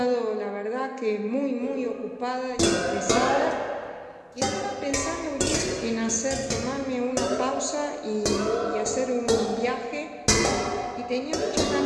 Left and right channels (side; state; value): both; identical; correlation 1.00